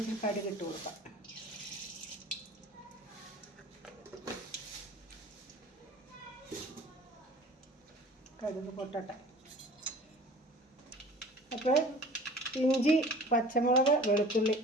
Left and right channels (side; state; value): both; normal; correlation 0.45